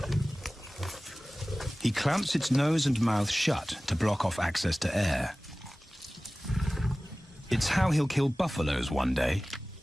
He clamps its nose and mouth shut to block off access to air. It's how he'll kill buffaloes one day.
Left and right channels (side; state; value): both; normal; correlation 0.97